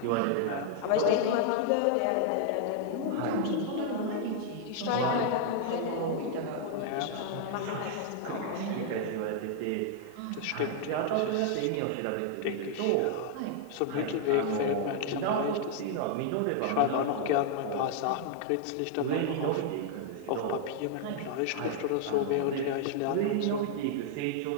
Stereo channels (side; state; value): both; different; correlation -0.01